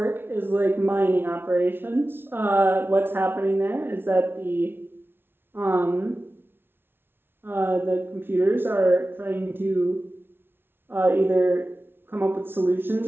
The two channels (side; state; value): left; late; 0.11 ms